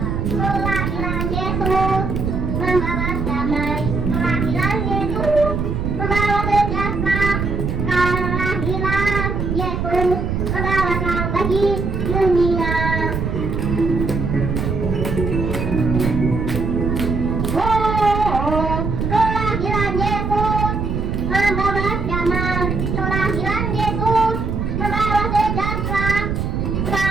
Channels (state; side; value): noise; right; rumble, 1 dB below the sound